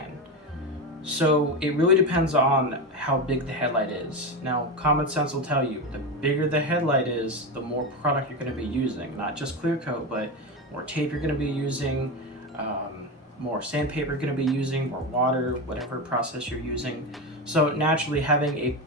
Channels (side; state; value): both; normal; correlation 0.18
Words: So it really depends on how big the headlight is. Now, common sense will tell you, the bigger the headlight is, the more product you're going to be using. Not just clear coat, but more tape you're going to be using, more sandpaper you're going to be using, more water, whatever process you're using. So naturally, having a